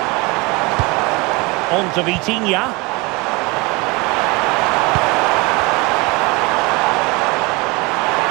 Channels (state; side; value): quieter; left; 25.4 dB